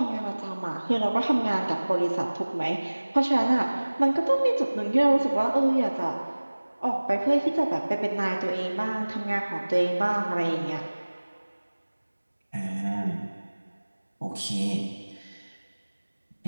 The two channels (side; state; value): both; inverted; correlation -1.00